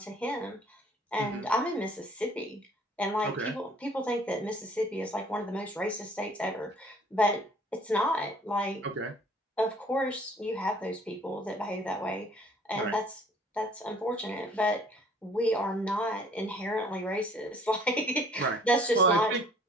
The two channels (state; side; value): normal; both; correlation 0.56